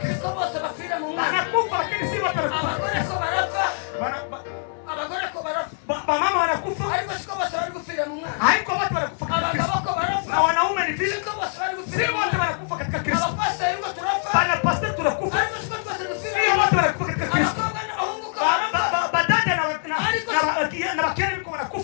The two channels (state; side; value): silent; right; digital silence